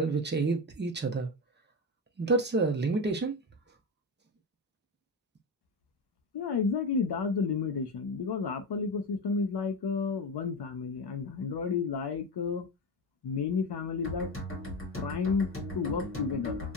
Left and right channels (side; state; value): both; normal; correlation 0.19